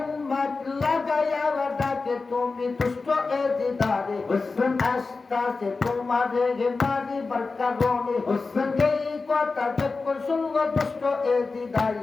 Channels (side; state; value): right; quieter; 4.0 dB